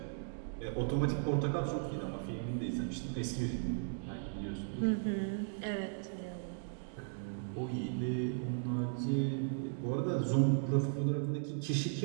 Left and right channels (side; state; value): left; silent; digital silence